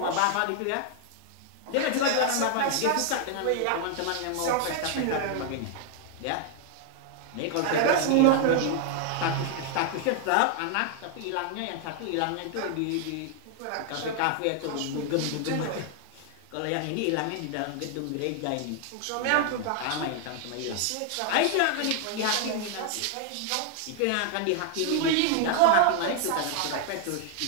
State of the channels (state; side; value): different; both; correlation 0.00